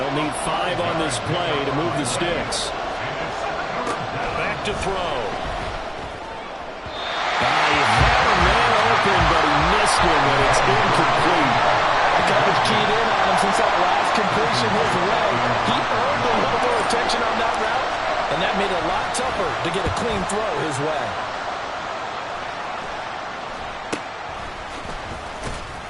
need 5 on this play to move the sticks. Back to throw. But he missed him, and it's incomplete. The coverage keyed in on him since that last completion his way. He earned a little more attention on that route, and that made it a lot tougher to get a clean throw his way.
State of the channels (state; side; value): identical; both; correlation 1.00